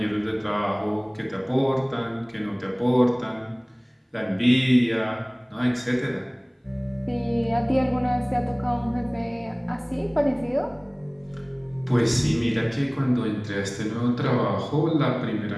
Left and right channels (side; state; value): both; identical; correlation 1.00